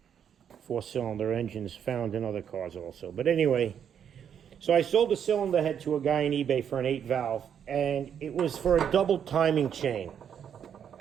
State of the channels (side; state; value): left; quieter; 8.4 dB